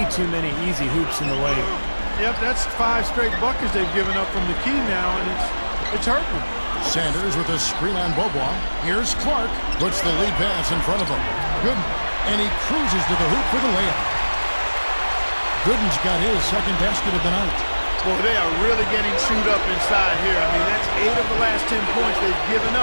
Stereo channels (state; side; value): inverted; both; correlation -1.00